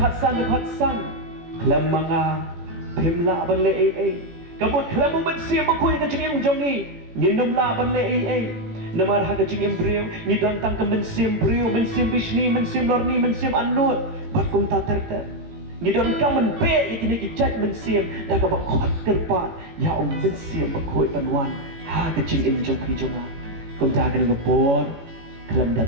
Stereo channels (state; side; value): late; left; 18 ms